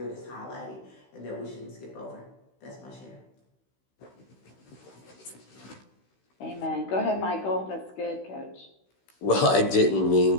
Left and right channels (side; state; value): right; late; 16 ms